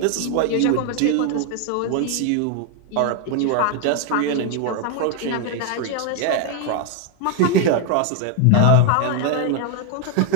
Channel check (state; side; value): different; both; correlation 0.00